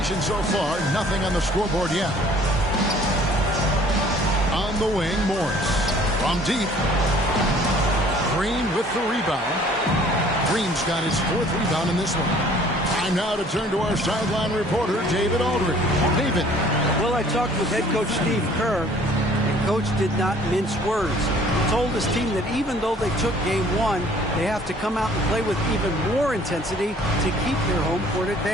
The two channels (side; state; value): both; normal; correlation 0.54